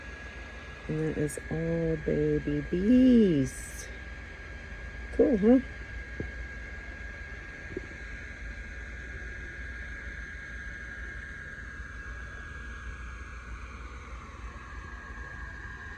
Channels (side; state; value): both; identical; correlation 1.00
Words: And that is all baby bees. Cool, huh?